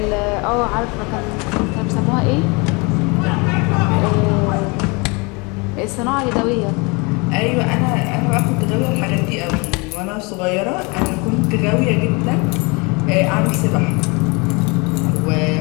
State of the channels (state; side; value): quieter; right; 29.0 dB